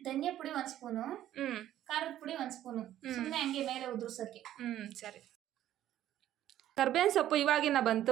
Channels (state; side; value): quieter; left; 12.4 dB